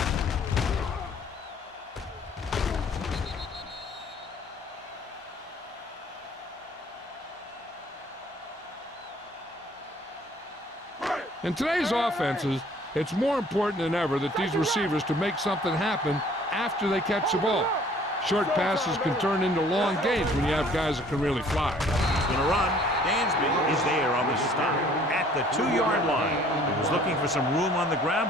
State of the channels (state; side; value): normal; both; correlation 0.56